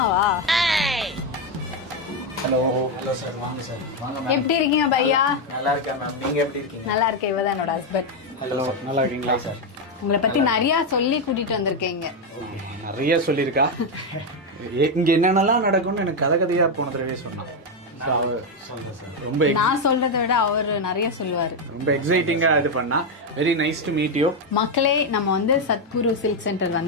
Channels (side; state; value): both; normal; correlation 0.05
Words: ஹலோ ஹலோ சார், வாங்க சார். வாங்க. எப்படி இருக்கீங்க பையா? நல்லா இருக்கேன் மேம், நீங்க எப்படி இருக்கீங்க? நல்லா இருக்கேன். இவதான் என்னோட ஹஸ்பண்ட். ஹலோ, நல்லா இருக்கீங்களா சார்? உங்களை பத்தி நிறைய சொல்லி கூட்டிட்டு வந்திருக்கீங்க. நிறைய சொல்லியிருக்கா. இங்க என்னென்னலாம் நடக்கும்னு எனக்கு கதையா போன தடவை சொன்னான். ரொம்ப நான் சொல்றதை விட அவர் நிறைய சொல்லுவாரு. ரொம்ப எக்ஸைட்டிங்கா இது பண்ணா. Very nice to meet you. மக்களே, நம்ம வந்து சத்குரு சில்க் சென்டர்